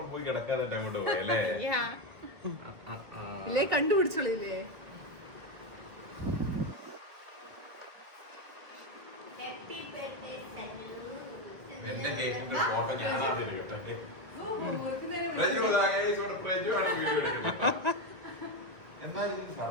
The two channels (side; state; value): left; late; 1.7 ms